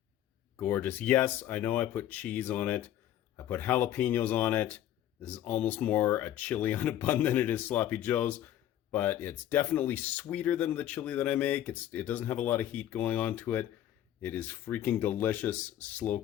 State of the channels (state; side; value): quieter; right; 11.8 dB